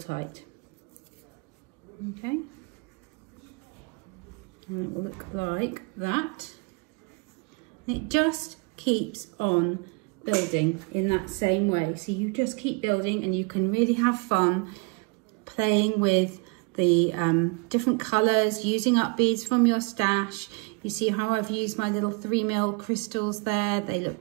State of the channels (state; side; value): quieter; left; 30.5 dB